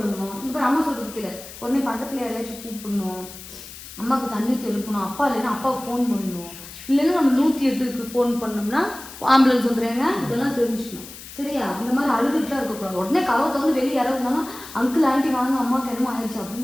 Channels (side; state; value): left; noise; hiss, 15 dB below the sound